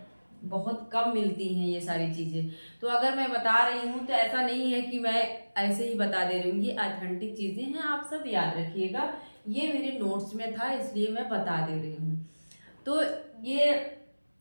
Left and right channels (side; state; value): both; inverted; correlation -1.00